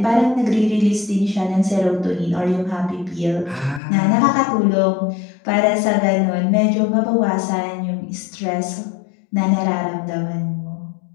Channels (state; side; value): drops out; right; at 3.8 s